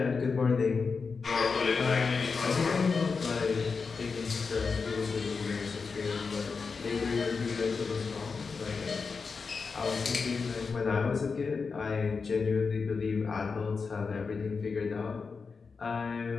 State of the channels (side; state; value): right; quieter; 4.9 dB